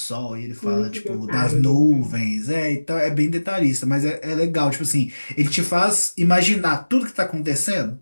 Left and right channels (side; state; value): both; inverted; correlation -1.00